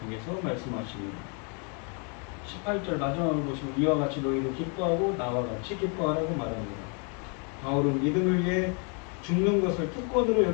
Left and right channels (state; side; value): quieter; right; 37.5 dB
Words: 통해서 말씀하십니다. 18절 마지막을 보시면 이와 같이 너희도 기뻐하고 나와 같이 기뻐하라고 말합니다. 바울은 믿음을 위해 죽는 것을 특권으로